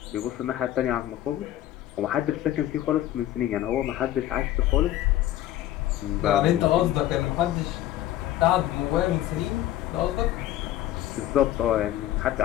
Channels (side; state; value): right; quieter; 13.4 dB